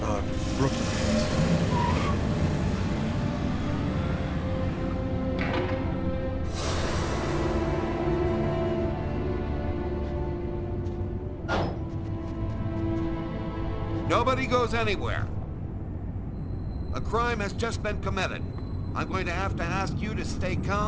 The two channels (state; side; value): identical; both; correlation 1.00